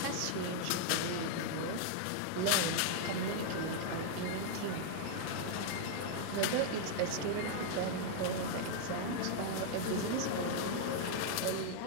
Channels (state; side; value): different; both; correlation -0.01